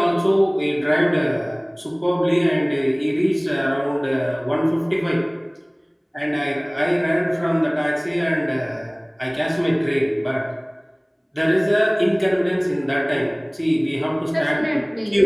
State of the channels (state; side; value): identical; both; correlation 1.00